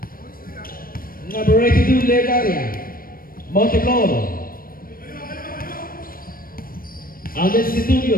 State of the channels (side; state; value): right; late; 0.42 ms